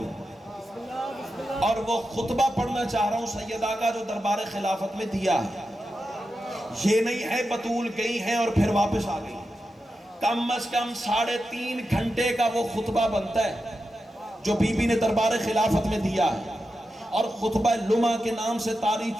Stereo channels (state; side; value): normal; both; correlation 0.90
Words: اور وہ خطبہ پڑھنا چاہ رہا ہوں سیدہ کا جو دربار خلافت میں دیا ہے. یہ نہیں ہے بطول گئی ہیں اور پھر واپس آ گئی. کم از کم 3.5 گھنٹے کا وہ خطبہ بنتا ہے جو بی بی نے دربار خلافت میں دیا ہے، اور خطبہ لمعہ کے نام سے تاریخ